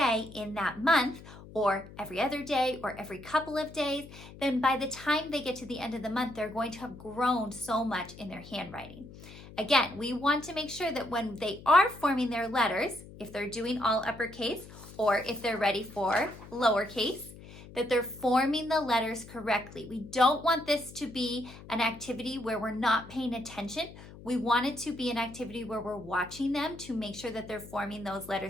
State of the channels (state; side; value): noise; left; hum, 17 dB below the sound